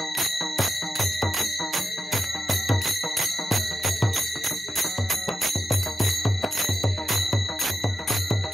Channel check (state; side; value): normal; both; correlation 0.89